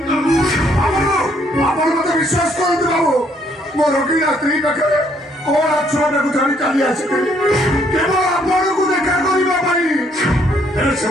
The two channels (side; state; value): both; normal; correlation 0.68